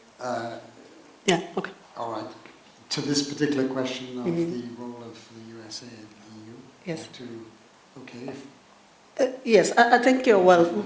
Yeah, okay. All right. To this particular question of the role of the USA and the EU? Yes. Yes, I think,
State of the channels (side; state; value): both; identical; correlation 1.00